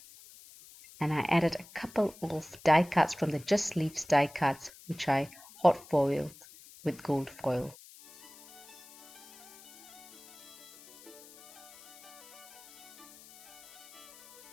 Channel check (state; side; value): noise; left; hiss, 20 dB below the sound